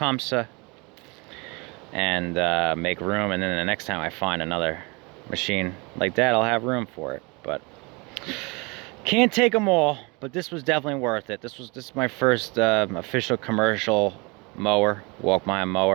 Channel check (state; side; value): quieter; left; 28.2 dB